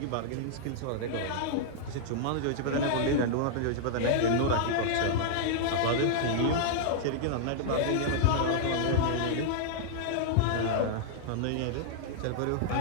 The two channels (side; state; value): both; different; correlation -0.01